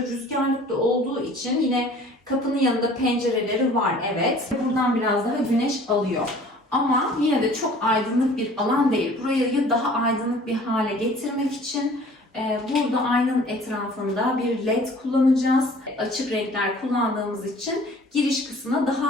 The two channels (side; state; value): both; normal; correlation 0.50